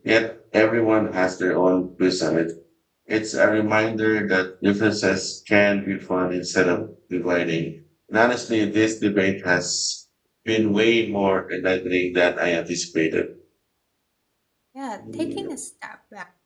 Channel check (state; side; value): identical; both; correlation 1.00